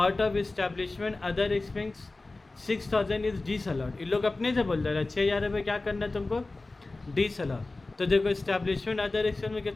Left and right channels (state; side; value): quieter; right; 3.2 dB